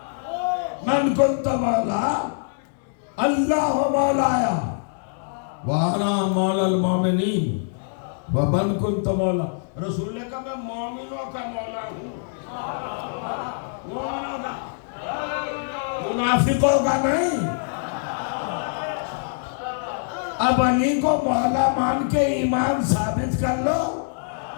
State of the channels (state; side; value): silent; right; digital silence